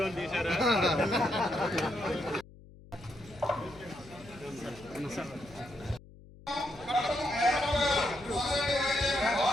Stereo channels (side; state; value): left; noise; hum, 21 dB below the sound